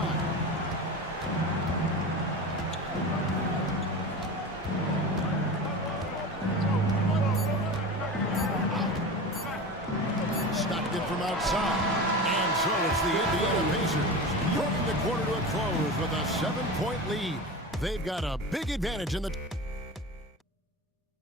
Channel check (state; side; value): normal; both; correlation 0.29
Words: Stockton from outside. And so it's the Indiana Pacers bringing the quarter to a close with a 7-point lead. They've got a big advantage in the...